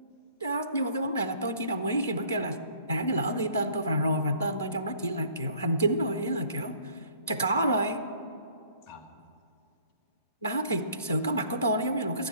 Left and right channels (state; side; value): inverted; both; correlation -0.57